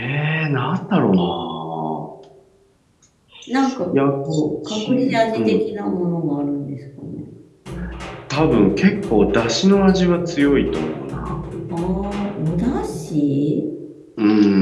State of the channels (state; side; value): identical; both; correlation 1.00